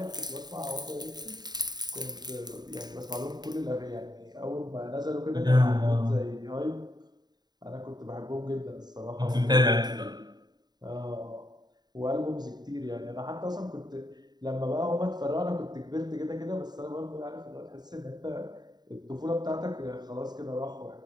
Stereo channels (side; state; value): left; late; 0.20 ms